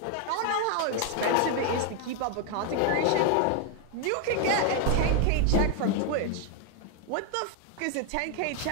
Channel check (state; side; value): different; both; correlation 0.00